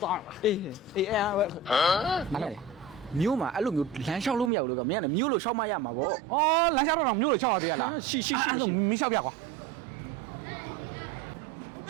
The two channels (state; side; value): drops out; left; at 4.5 s